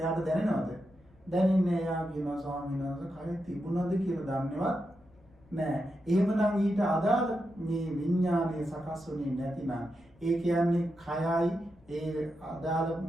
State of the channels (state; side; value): noise; left; rumble, 29 dB below the sound